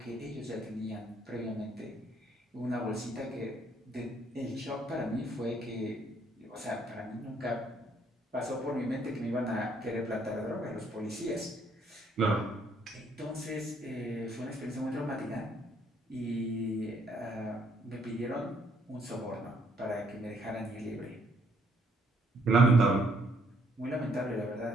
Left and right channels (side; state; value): both; normal; correlation 0.68